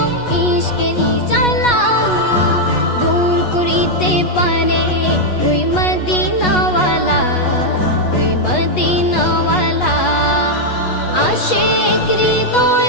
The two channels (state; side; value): late; right; 8.2 ms